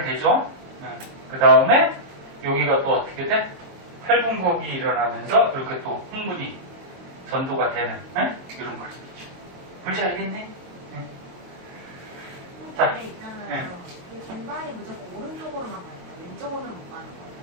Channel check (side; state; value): left; late; 22 ms